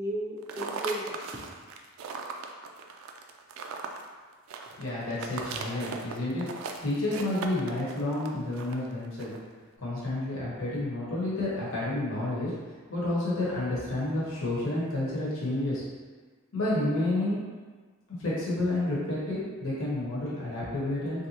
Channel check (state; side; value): normal; both; correlation 0.58